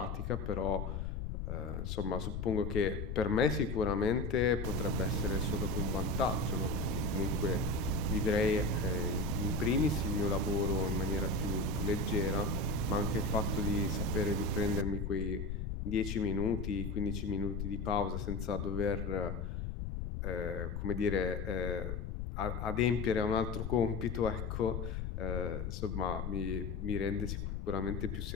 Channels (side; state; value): left; noise; rumble, 3 dB below the sound